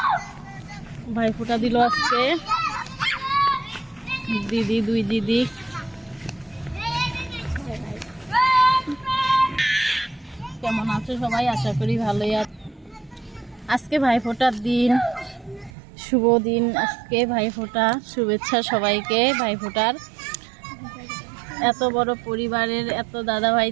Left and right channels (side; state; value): left; drops out; at 15.7 s